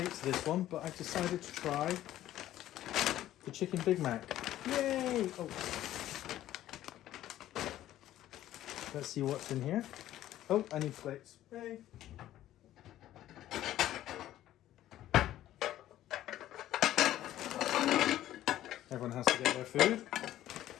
to this one, but I decided to try the Chicken Big Mac. Yay! Oh. Let's see what's in here. Oh, I need plates. Yay! Everyone has to get their food.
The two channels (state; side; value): quieter; right; 13.4 dB